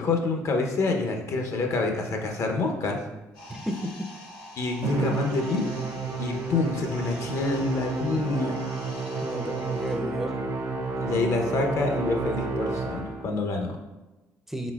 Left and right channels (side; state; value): both; normal; correlation 0.58